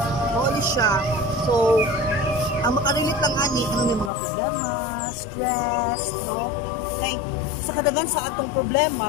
ano siya. So, ang makarelate lang ani, ano may mga problema, stress, no? Kay, sa kadagan sa atong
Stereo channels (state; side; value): drops out; right; at 4.1 s